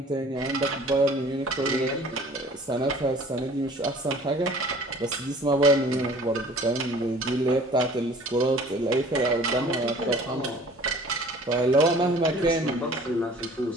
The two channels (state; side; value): normal; both; correlation 0.49